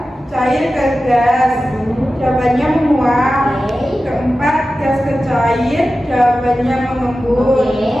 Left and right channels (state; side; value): normal; both; correlation 0.94